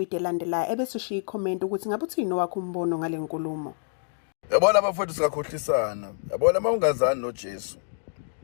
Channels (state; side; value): silent; right; digital silence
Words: elandelayo ebese ushiya ikhomenti ukuthi ngabe uthini owakho umbono ngale nkulumo. Yabona abafowethu singakhohlisana. Yabona mawungazani noJesu.